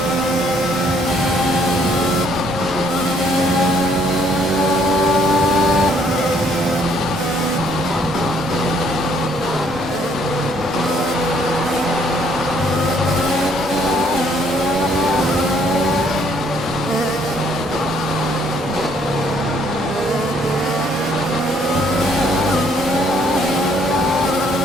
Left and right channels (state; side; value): normal; both; correlation 0.65